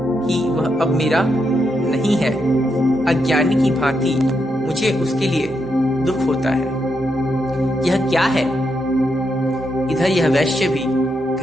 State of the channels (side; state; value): both; normal; correlation 0.82